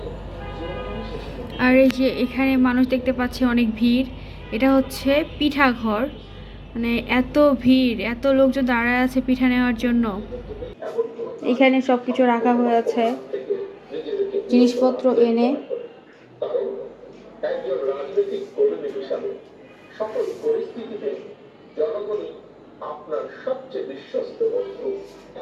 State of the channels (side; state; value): both; identical; correlation 1.00